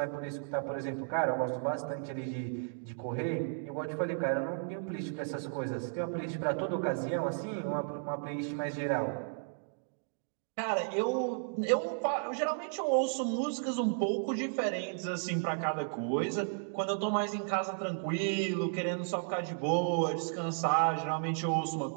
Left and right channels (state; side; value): silent; left; digital silence